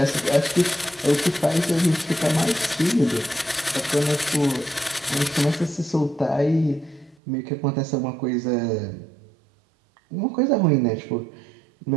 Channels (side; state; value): left; drops out; at 7.2 s